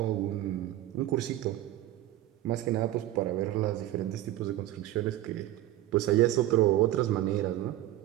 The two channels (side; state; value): left; quieter; 14.5 dB